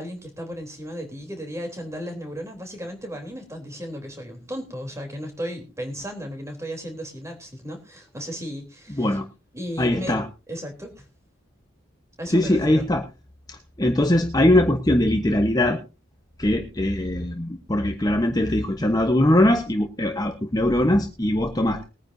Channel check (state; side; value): normal; both; correlation 0.81